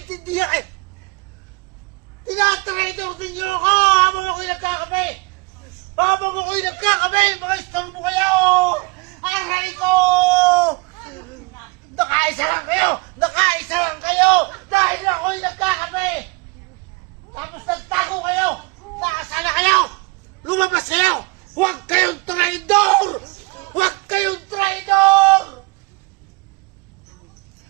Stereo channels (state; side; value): quieter; left; 26.6 dB